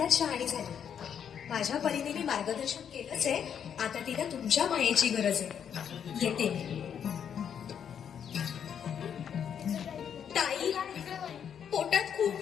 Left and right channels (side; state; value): right; quieter; 8.2 dB